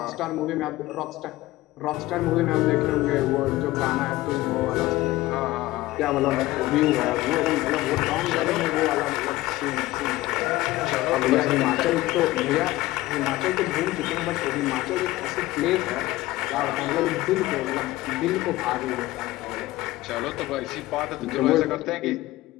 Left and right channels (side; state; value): right; quieter; 17.8 dB